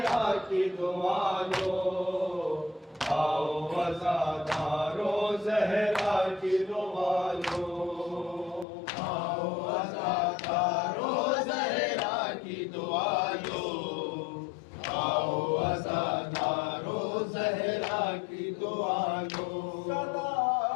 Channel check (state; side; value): drops out; right; at 8.7 s